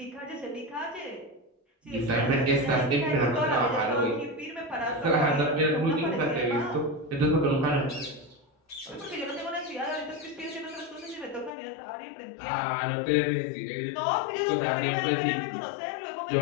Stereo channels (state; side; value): drops out; right; at 11.5 s